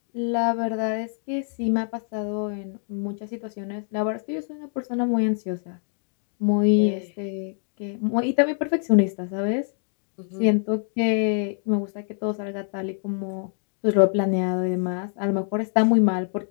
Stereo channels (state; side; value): silent; right; digital silence